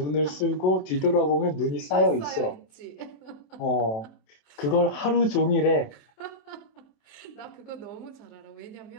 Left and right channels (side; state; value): right; late; 27 ms